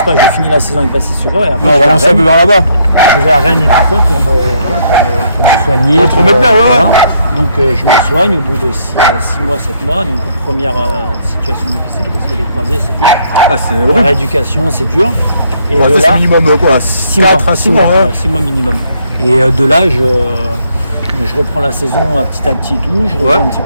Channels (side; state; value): both; inverted; correlation -0.70